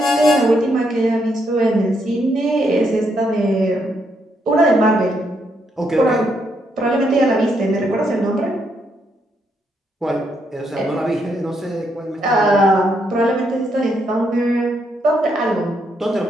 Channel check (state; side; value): normal; both; correlation 0.76